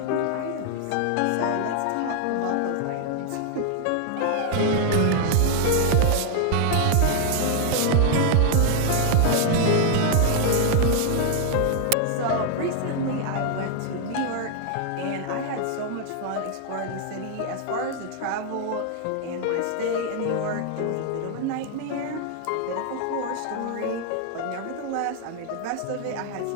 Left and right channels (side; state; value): both; different; correlation 0.00